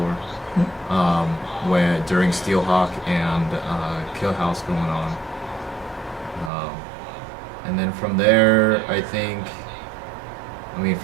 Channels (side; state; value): left; drops out; at 6.5 s